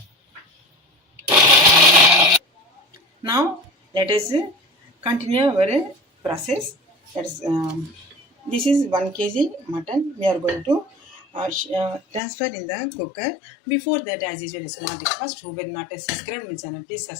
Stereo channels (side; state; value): right; drops out; at 12.2 s